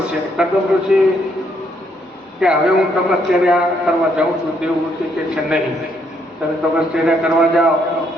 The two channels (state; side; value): normal; both; correlation 0.72